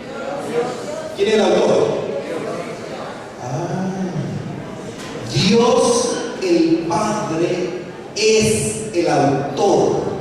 ¿Quién es el autor? Dios el Padre es el autor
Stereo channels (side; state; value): both; identical; correlation 1.00